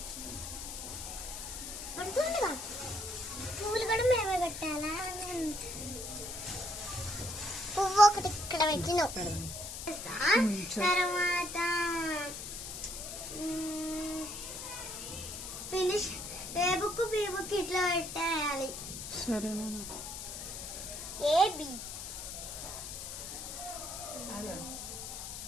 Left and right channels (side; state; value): left; noise; hiss, 8 dB below the sound